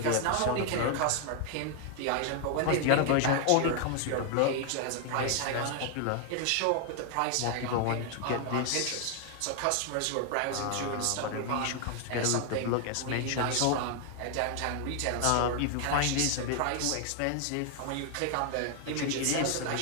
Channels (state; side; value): different; both; correlation 0.00